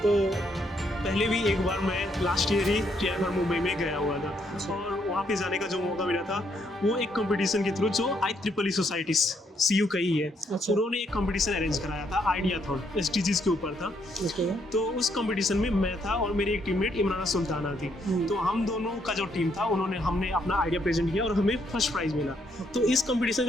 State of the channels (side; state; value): both; normal; correlation 0.73